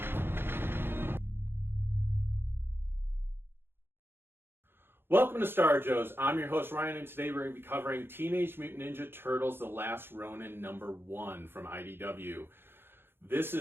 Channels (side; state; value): left; late; 0.11 ms